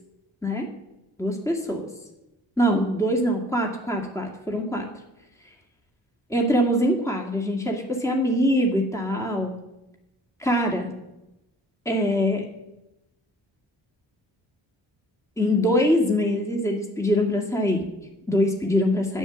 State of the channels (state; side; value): normal; both; correlation 0.56